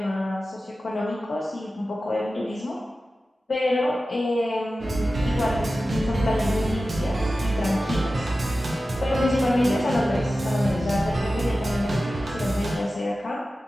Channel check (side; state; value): both; normal; correlation 0.94